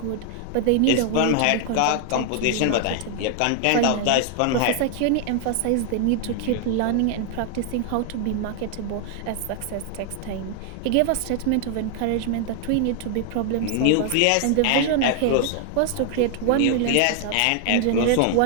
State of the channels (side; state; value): both; different; correlation 0.00